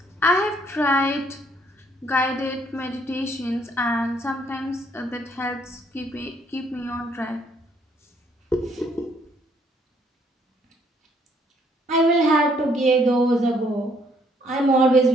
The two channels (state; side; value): normal; both; correlation 0.66